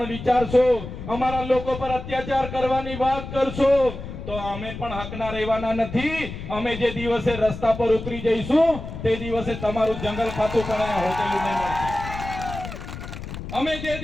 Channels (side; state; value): left; noise; rumble, 9 dB below the sound